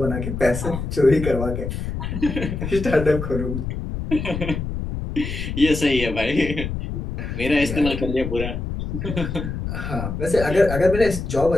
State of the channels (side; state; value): left; noise; rumble, 5 dB below the sound